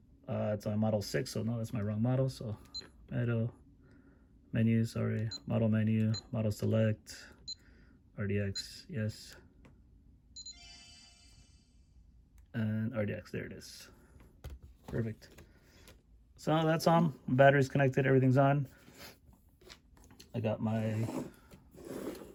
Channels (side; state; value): both; identical; correlation 1.00